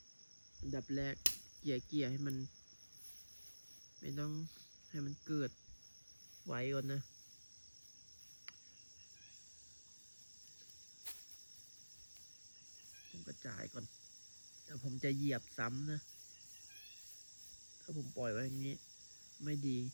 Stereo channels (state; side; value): inverted; both; correlation -1.00